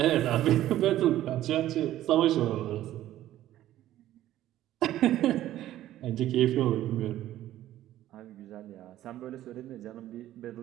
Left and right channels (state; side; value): quieter; left; 13.5 dB